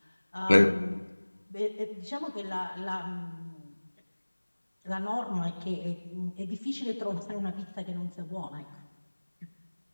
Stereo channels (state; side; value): inverted; both; correlation -1.00